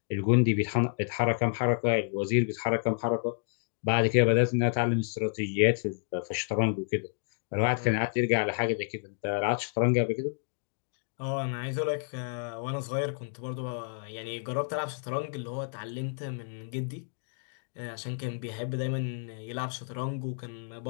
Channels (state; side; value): silent; right; digital silence